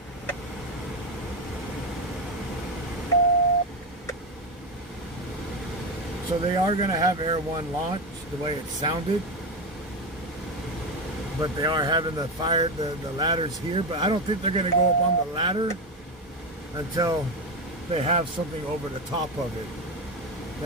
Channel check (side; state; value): both; normal; correlation 0.14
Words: So they are going to have Air 1 launch the way it sounded. But they are having the ladders here. But I don't think they're going to go up on the ladder until they have something over the top of it.